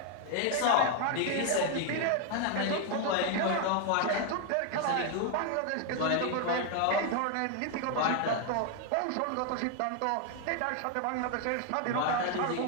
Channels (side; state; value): both; different; correlation 0.00